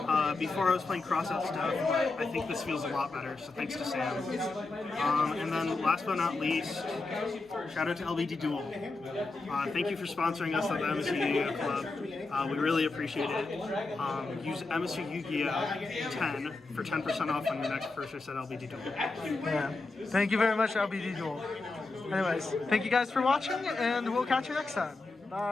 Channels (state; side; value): quieter; right; 3.5 dB